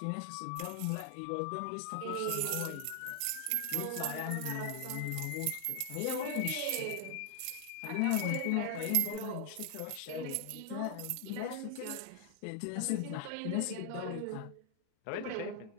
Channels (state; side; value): different; both; correlation 0.00